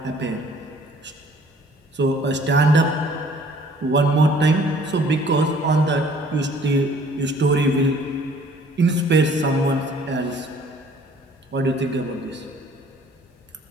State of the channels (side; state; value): both; normal; correlation 0.55